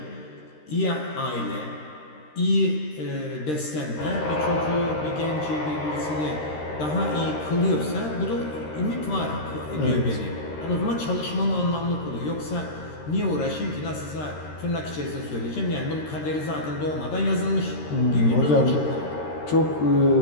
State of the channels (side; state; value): right; late; 13 ms